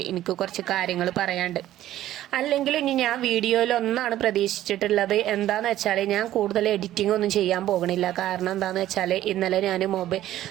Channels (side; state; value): left; quieter; 13.4 dB